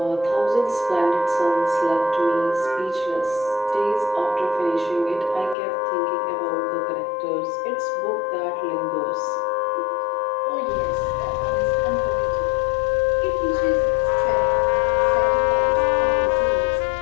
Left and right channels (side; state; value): right; drops out; at 5.6 s